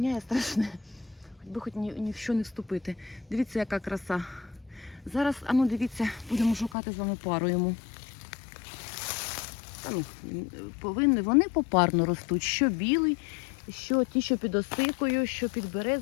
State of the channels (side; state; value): right; drops out; at 6.8 s